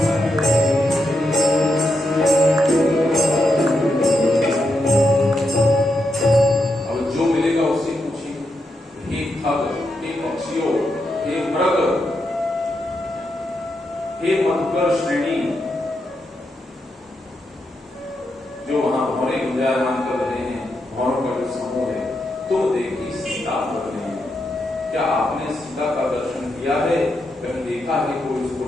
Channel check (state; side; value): normal; both; correlation 0.83